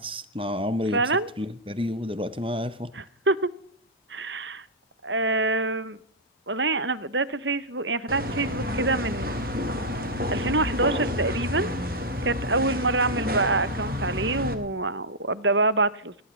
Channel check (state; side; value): normal; both; correlation -0.07